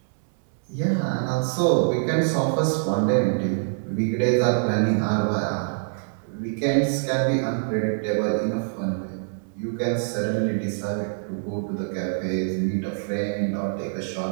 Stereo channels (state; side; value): silent; left; digital silence